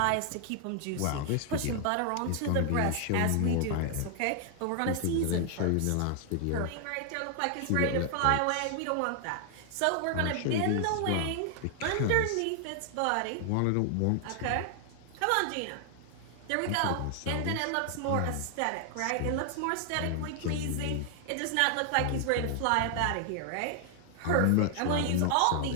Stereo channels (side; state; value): both; different; correlation 0.00